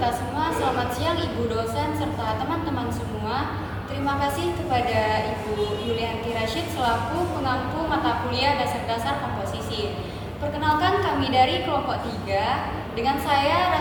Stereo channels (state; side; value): identical; both; correlation 1.00